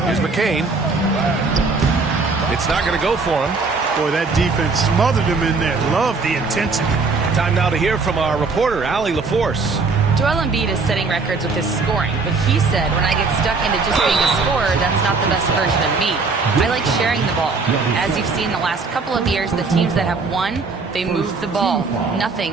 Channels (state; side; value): quieter; left; 4.2 dB